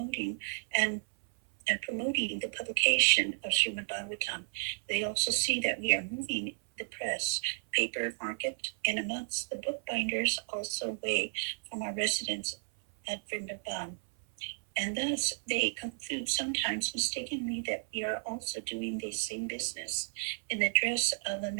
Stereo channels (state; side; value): silent; left; 56 dB below the other